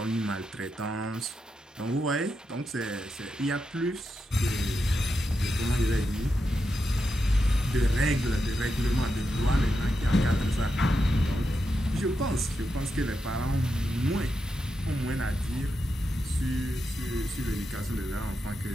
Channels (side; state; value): both; normal; correlation 0.87